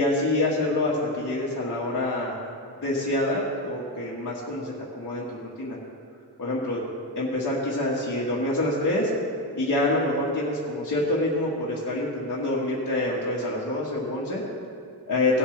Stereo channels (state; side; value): normal; both; correlation 0.12